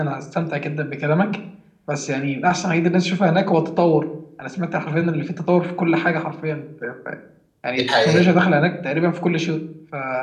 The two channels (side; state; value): both; identical; correlation 1.00